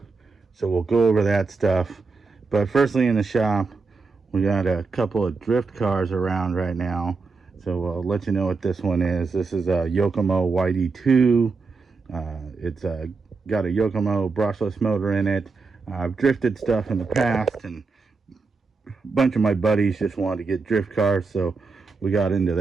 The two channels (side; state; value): left; quieter; 4.3 dB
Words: So we'll go over that stuff. But firstly, in the shop, we got a couple of drift cars around right now. So I'll let you know what this one is. This is a Yokomo YD2. It's got a Yokomo brushless motor in it. I've drifted stuff in the past, and a bunch of my buddies just wanted to get drift cars, so we got into